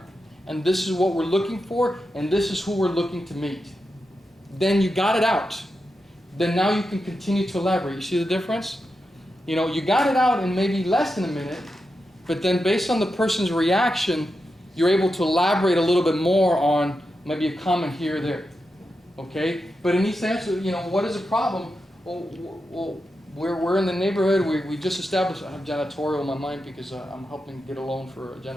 and this is what we're looking for, and this is who we're looking to meet. Then you got it out. Then now you can continue to elaborate. You see the difference? You know, you got it out in maybe less than a minute, but then based on the person's reaction, you're able to elaborate a little bit more on maybe a comment here or there. Okay? But in each answer, you know, what is the problem? Well, we're in the neighborhood. We just established, I have janitorial in my mind because I'm helping get a loan for a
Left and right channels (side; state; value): both; normal; correlation 0.88